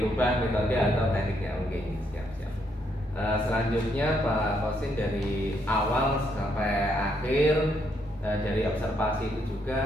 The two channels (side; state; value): both; normal; correlation 0.74